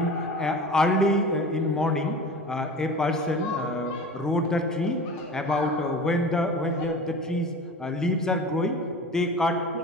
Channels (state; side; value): normal; both; correlation 0.36